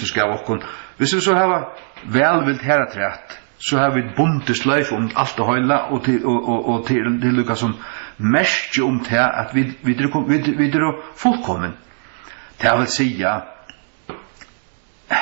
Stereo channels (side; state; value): left; silent; digital silence